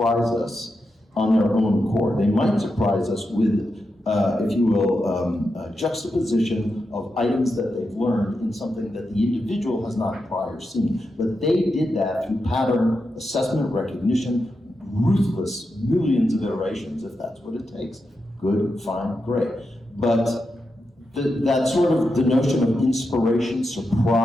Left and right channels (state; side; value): normal; both; correlation 0.87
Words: us on their own accord. They might surprise us with, if you will, a juxtaposition of items that they've learned in something that the individual has not prior seen. But they did that through pattern assessment, recognition, ruthless millions of iterations, if that's what it takes. Good, fine, great. But that sort of, the notion of inspiration,